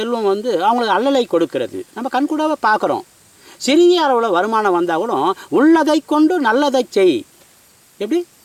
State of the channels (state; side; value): identical; both; correlation 1.00